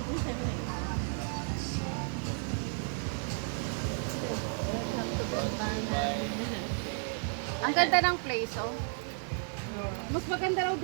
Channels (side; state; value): left; silent; 56 dB below the other